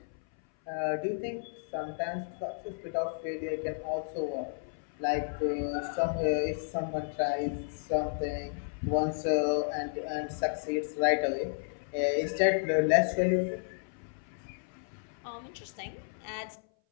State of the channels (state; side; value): silent; right; 56 dB below the other